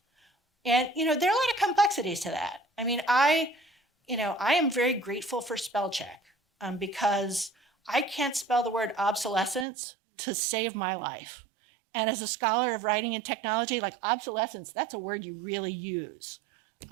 And, there are a lot of complexities to that. I mean, I am very grateful for spell check because I can't spell the word obsolescence to save my life. And as a scholar of writing and technology, like obsolescence, that's a word you really use.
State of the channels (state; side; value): drops out; left; at 9.7 s